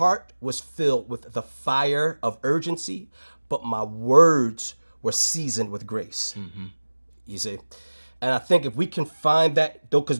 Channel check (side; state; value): both; inverted; correlation -1.00